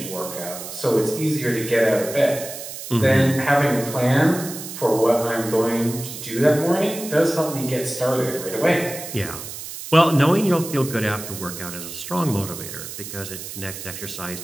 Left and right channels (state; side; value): noise; right; hiss, 10 dB below the sound